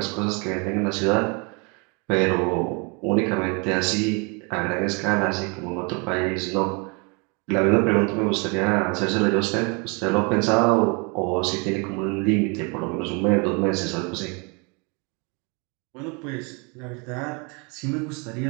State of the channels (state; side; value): quieter; left; 32.0 dB